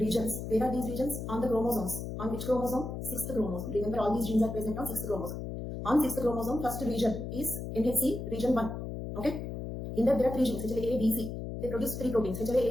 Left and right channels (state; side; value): noise; left; hum, 6 dB below the sound